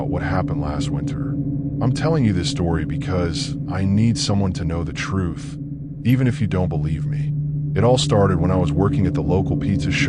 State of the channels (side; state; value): both; identical; correlation 1.00